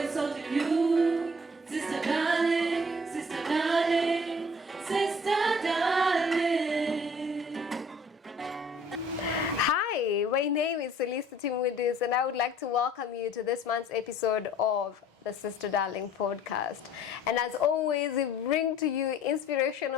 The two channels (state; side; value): normal; both; correlation 0.54